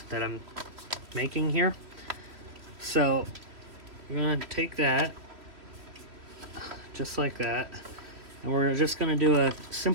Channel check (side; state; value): left; late; 2.9 ms